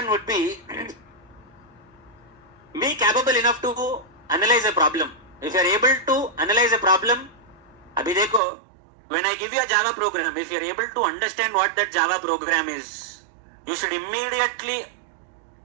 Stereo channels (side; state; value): left; drops out; at 8.4 s